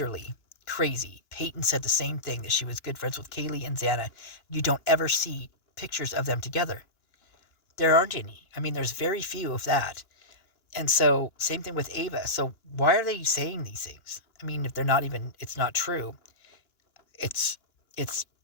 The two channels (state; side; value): late; right; 2.9 ms